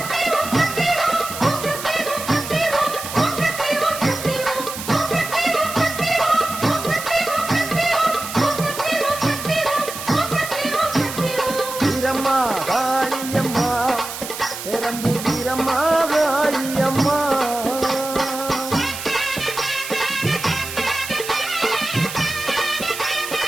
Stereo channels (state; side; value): noise; right; hiss, 9 dB below the sound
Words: வீரம்மா காளியம்மா பெரம்பூர் வீரம்மா காளியம்மா